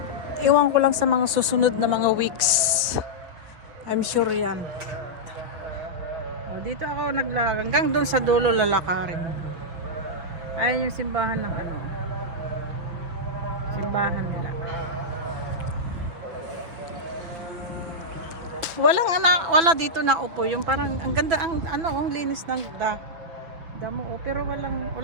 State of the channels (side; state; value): left; late; 6.1 ms